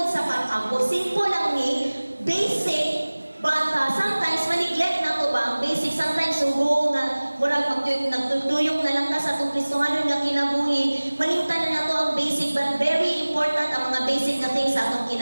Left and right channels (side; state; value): both; inverted; correlation -1.00